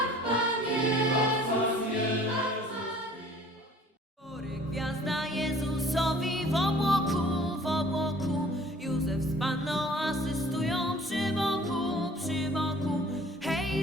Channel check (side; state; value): both; normal; correlation 0.52